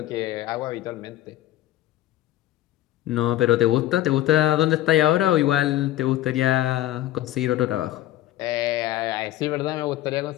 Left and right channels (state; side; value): quieter; right; 14.3 dB